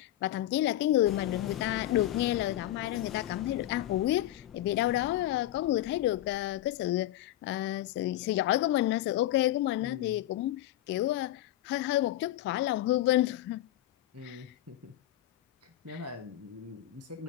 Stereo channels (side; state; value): right; quieter; 14.0 dB